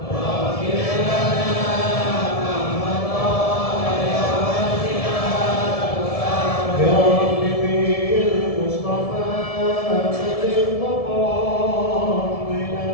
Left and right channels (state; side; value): late; right; 1.7 ms